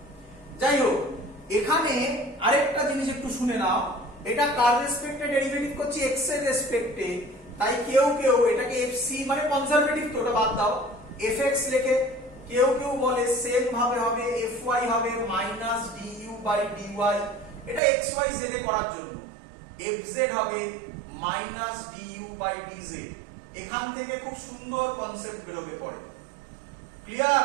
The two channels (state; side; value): drops out; left; at 17.8 s